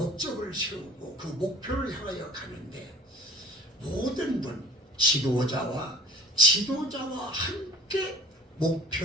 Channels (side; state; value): both; normal; correlation 0.46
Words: 세우고 그 목표를 향하여 가는데 모든 분 지도자와 함께